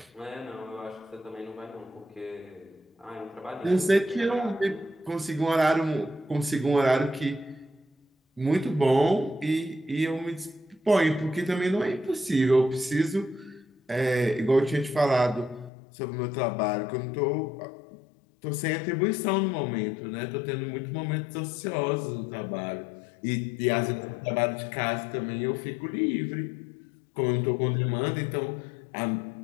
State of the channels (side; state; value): right; drops out; at 15.7 s